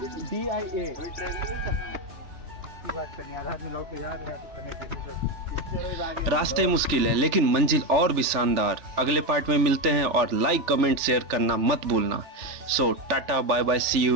DIA की बात करनी आधा आदमी लोग तो याद है करने रास्ते मुश्किल है लेकिन मंजिल और भी शानदार। अगले पार्ट में मिलते हैं और लाइक कमेंट शेयर करना मत भूलना। So tata bye bye, see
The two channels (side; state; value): left; late; 3.4 ms